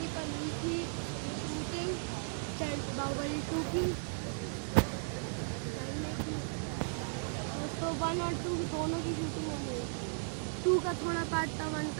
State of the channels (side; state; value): left; silent; digital silence